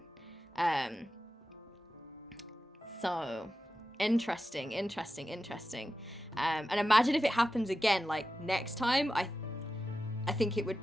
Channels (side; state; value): both; normal; correlation 0.92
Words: So interesting. And imagine if it happens again, like next time. I think it would